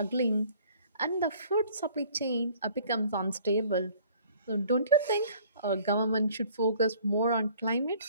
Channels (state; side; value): inverted; both; correlation -0.54